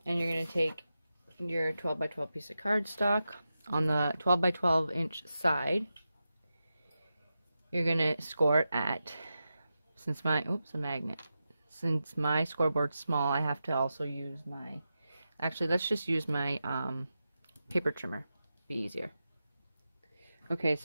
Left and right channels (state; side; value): inverted; both; correlation -0.90